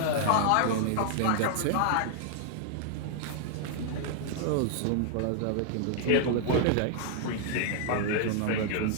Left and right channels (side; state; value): both; different; correlation 0.00